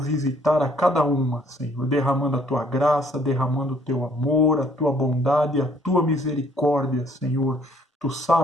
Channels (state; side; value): normal; both; correlation 0.62